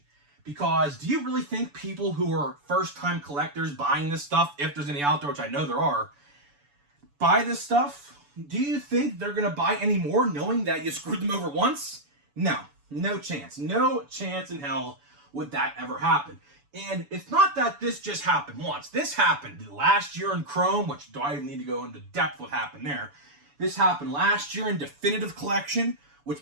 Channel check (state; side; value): late; left; 7.0 ms